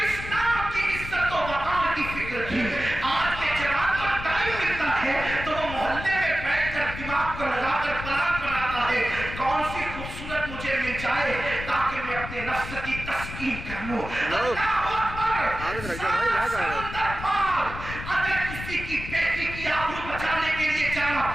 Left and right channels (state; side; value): noise; left; rumble, 9 dB below the sound